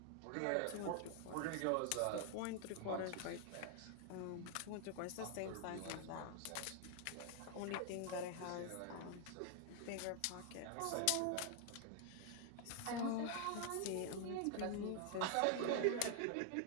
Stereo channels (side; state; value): both; different; correlation 0.00